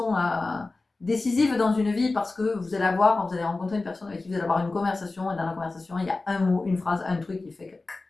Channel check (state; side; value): quieter; right; 3.4 dB